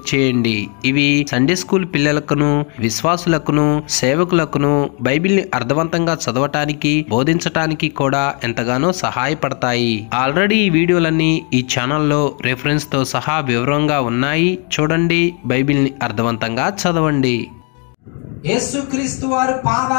చేయండి. ఇవి సండే స్కూల్ పిల్లలకును, విశ్వాసులకును, సేవకులకును బైబిల్ని అర్థవంతంగా చదవటానికి, బోధించటానికి కూడా ఎంతగానో సహాయపడతాయి. ఆల్రెడీ ఈ వీడియోలన్నీ ఈ ఛానల్లో రెఫరెన్స్తో సహా వివరంగా ఉన్నాయి. చూడండి, బైబిల్ని అర్థవంతంగా చదవండి. యేసుక్రీస్తు వారి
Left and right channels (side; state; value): right; quieter; 36.9 dB